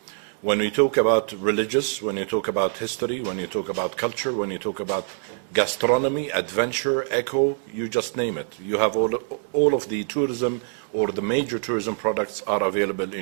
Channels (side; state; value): left; silent; 62 dB below the other